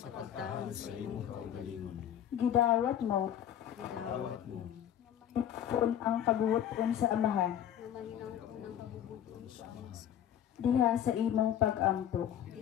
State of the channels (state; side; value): quieter; right; 10.2 dB